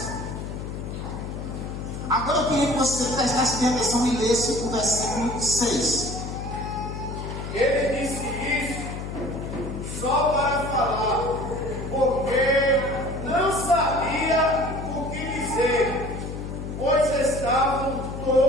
Agora eu queria que você prestasse atenção e lesse o versículo 6. Ele disse isso só para falar, porque não sabia o que dizer, pois estavam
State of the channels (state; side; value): noise; left; hum, 7 dB below the sound